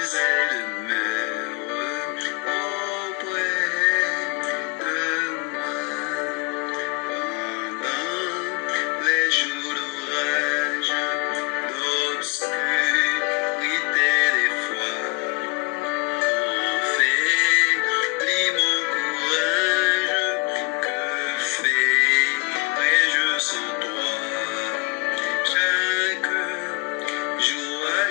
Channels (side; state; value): right; quieter; 26.1 dB